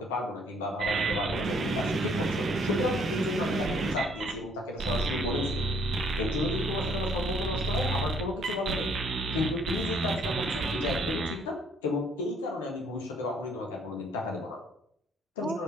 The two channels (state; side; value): normal; both; correlation 0.64